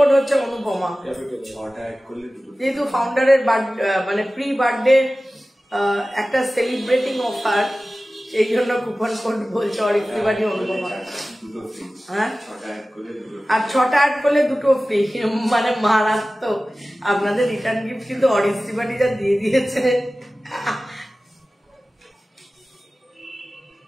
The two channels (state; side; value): normal; both; correlation 0.96